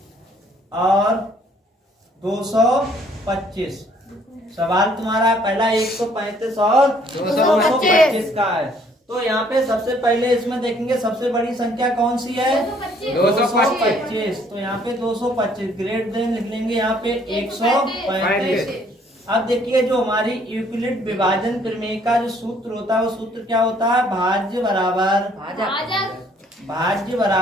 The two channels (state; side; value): normal; both; correlation 0.62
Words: 225। सवाल तुम्हारा पहला 135 और 225 का है। तो यहाँ पे सबसे पहले इसमें देखेंगे सबसे बड़ी संख्या कौन सी है, 225। तो यहाँ पे 225 ग्रेट देन लिख लेंगे यहाँ पे 135। अब देखिए जो हमारी यूक्लिड विभाजन प्रमेय का जो सूत्र होता है वो सूत्र क्या होता है, भाज्य बराबर